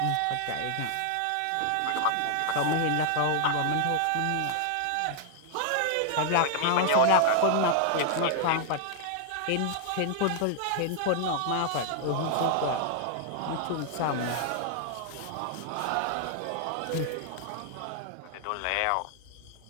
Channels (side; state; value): both; different; correlation 0.00